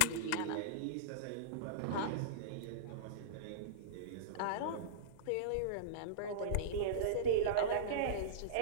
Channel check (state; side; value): different; both; correlation -0.04